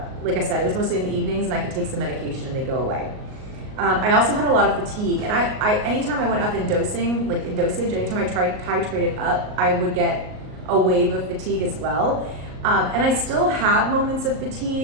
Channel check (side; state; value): left; late; 38 ms